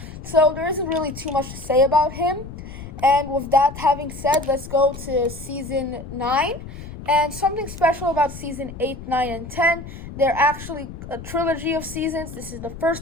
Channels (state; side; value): noise; left; rumble, 12 dB below the sound